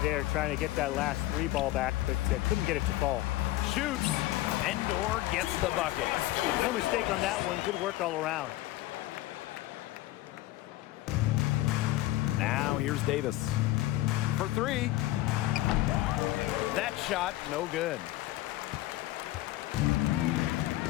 there, trying to get that last 3 ball back, but couldn't get it to fall. Shoots. Endor gets the bucket. No mistake on that one. Good work all around. Now here's Davis for 3. That shot, no good.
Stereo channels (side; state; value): right; quieter; 16.5 dB